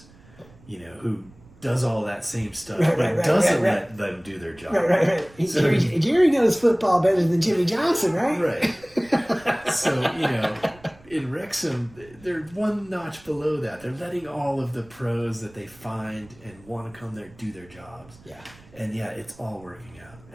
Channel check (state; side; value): noise; right; rumble, 25 dB below the sound